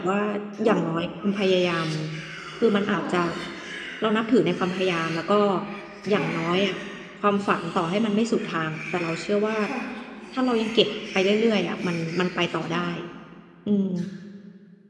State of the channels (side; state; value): both; identical; correlation 1.00